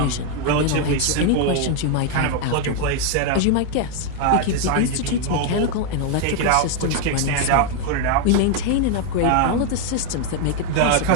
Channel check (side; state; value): both; different; correlation 0.01